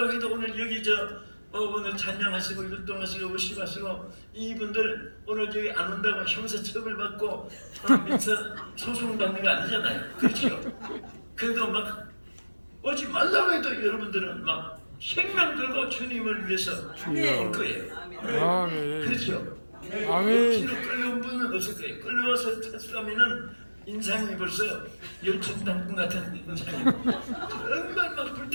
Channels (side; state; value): both; inverted; correlation -1.00